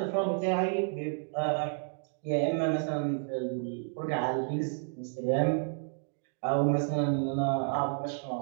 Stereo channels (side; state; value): left; silent; digital silence